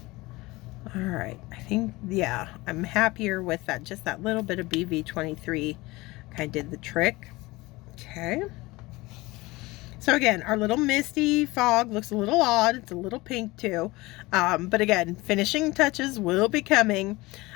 All right, I think, yeah, I'm happier with that. Just that little bit of BV23 kind of did the trick. Okay. So again, our little misty fog looks a little odd. It's a little pink too. But again, finishing touches will be coming.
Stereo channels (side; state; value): right; quieter; 21.4 dB